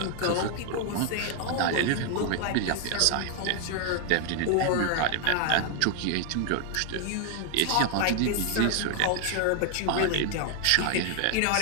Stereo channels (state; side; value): different; both; correlation 0.00